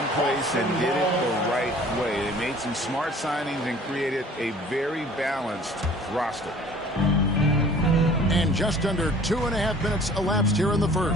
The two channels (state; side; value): normal; both; correlation 0.50